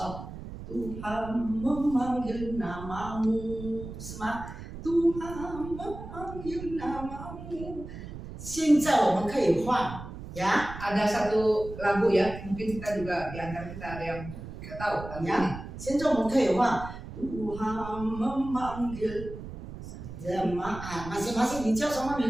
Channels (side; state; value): right; noise; rumble, 11 dB below the sound